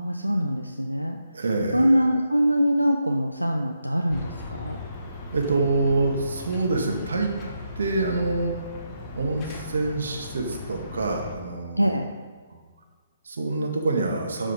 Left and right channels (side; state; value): both; inverted; correlation -0.82